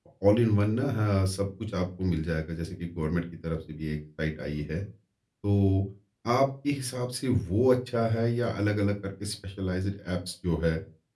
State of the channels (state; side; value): identical; both; correlation 1.00